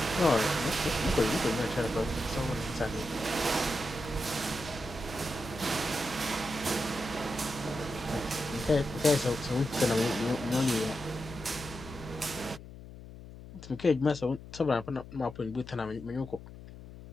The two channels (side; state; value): left; noise; hum, 15 dB below the sound